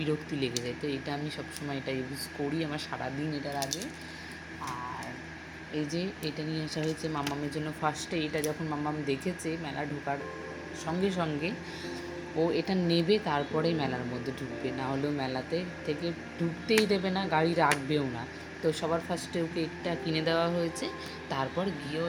লেগে যায়, তো এটা আমি সব সময় এটা ইউজ করি, আমার সারাদিন এটা লাগে। আর এই যে এটা নিয়ে আসা হয়েছে মাম্মামের জন্য। ফার্স্টে এটা যখন মাম্মাম দেখেছে মেলা ঢোকার সঙ্গে সঙ্গে, ও এটা নেবে, তারপরেই মেলার মধ্যে ঢুকবে, না হলেও মেলাতে থেকে ঢুকতেই দেবে না, গাড়ি রাখবেও না। তো সবার ফার্স্টে ওকে এটা কিনে দেওয়া হয়েছে, তারপর গিয়েও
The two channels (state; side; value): identical; both; correlation 1.00